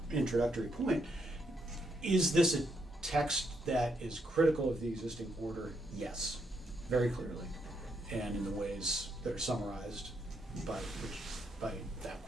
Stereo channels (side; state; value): both; normal; correlation 0.77